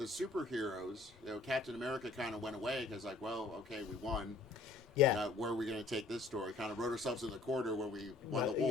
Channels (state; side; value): quieter; right; 3.4 dB